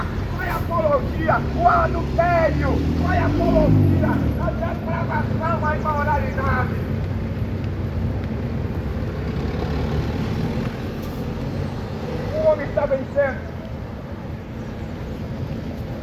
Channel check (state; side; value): identical; both; correlation 1.00